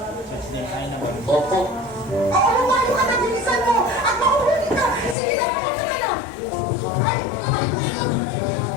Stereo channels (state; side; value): drops out; right; at 5.2 s